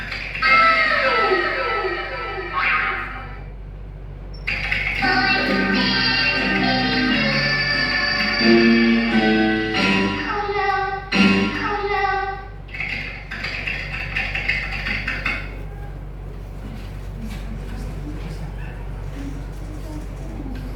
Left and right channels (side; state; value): both; identical; correlation 1.00